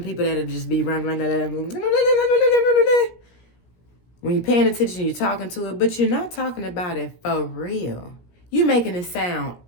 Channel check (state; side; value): late; right; 17 ms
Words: people that'll just be running. When you're paying attention, you're talking to it, but you're not talking about it for real. You're making it sound